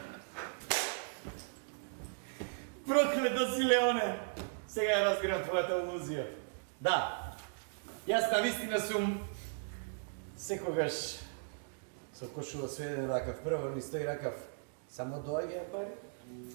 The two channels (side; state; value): left; silent; digital silence